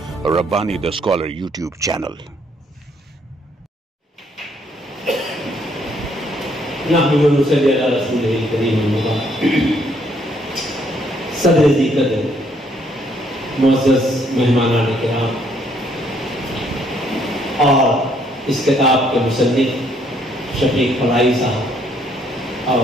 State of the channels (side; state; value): both; normal; correlation 0.68